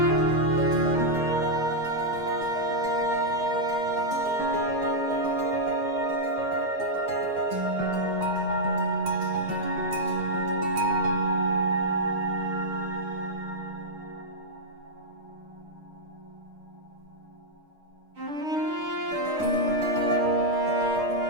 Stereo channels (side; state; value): left; late; 6.6 ms